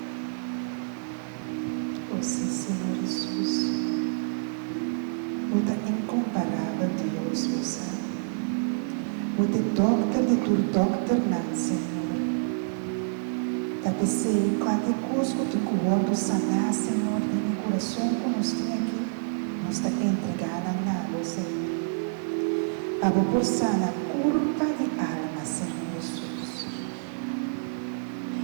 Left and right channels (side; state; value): left; silent; digital silence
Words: você, Senhor Jesus. Você é incomparável, Deus, você. Você é doctor de tu doctor, não, Senhor. Da pensei em qualquer coisa que tu corpo sanar, Senhor, em meu coração, como nós temos aqui, nós está entregando a você. Abo por sana culpa de alma, Senhor Jesus.